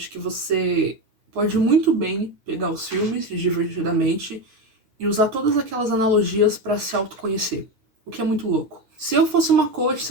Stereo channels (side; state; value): left; late; 9.6 ms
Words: que você pode muito bem pegar os filmes Divertidamente e usar todas aquelas analogias pra se autoconhecer, o que é muito louco. Se eu fosse uma coach,